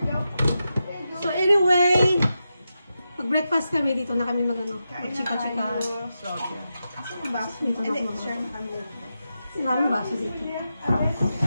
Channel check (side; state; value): both; inverted; correlation -0.89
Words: So anyway, mag-breakfast kami dito na kami magano. Mag-chika-chika. Dito na ako. Maraming baso dito.